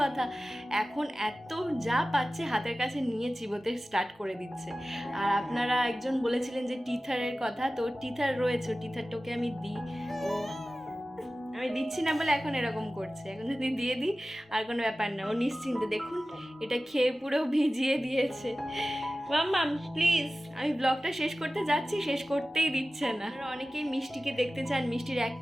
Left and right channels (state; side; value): normal; both; correlation 0.96